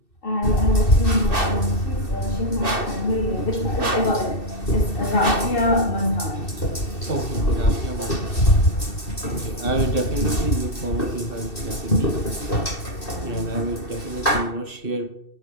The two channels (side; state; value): right; late; 2.7 ms